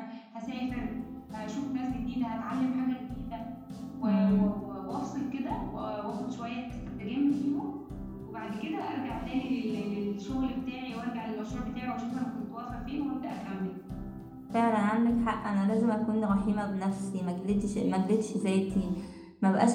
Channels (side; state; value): both; identical; correlation 1.00